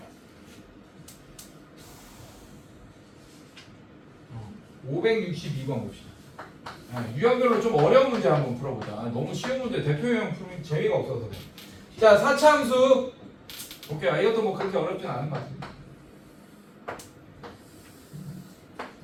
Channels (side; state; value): both; identical; correlation 1.00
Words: 562번 봅시다. 유형별로 좀 어려운 문제 한번 풀어보자. 너무 쉬운 문제 대표 유형 풀면 재미가 없어서. 자, 4차 함수. 오케이, 이것도 뭐 그렇게 어렵진 않은 것 같습니다.